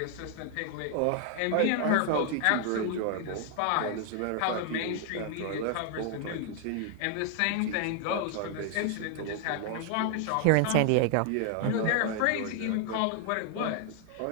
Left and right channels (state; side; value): different; both; correlation 0.00